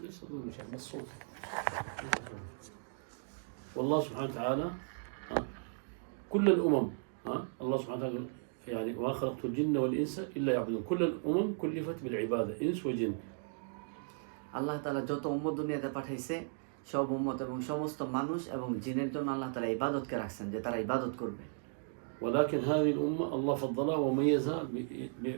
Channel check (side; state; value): left; silent; digital silence